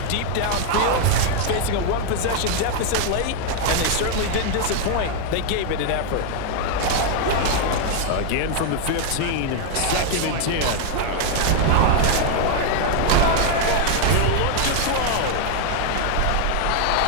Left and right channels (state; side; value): different; both; correlation 0.00